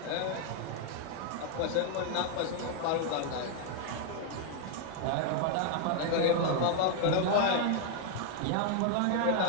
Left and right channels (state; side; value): different; both; correlation 0.00